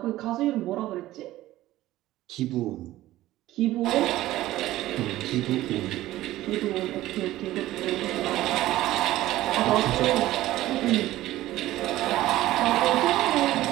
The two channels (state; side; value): quieter; left; 15.6 dB